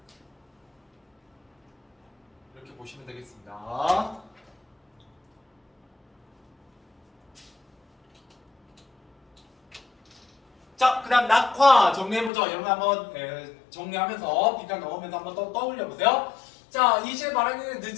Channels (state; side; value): drops out; right; at 12.3 s